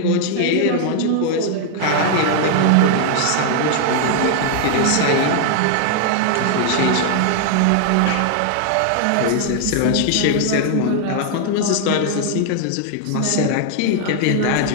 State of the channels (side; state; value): both; different; correlation 0.00